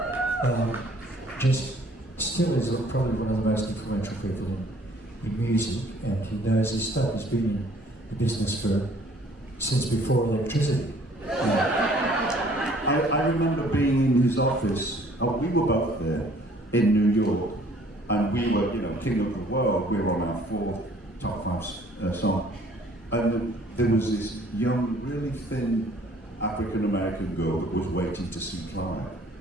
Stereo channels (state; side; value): normal; both; correlation 0.57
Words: Just still is probably one of the most influential people in music, and he knows his stuff. He's been in the business since before electricity. I remember being in his office. We were both there in New York, and we were, you know, king of the world. We were on our 4th top 5 song, and there was this young, really thin African American girl that was waiting to see Clive,